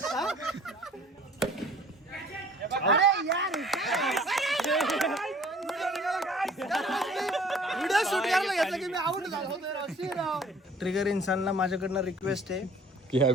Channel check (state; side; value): normal; both; correlation 0.52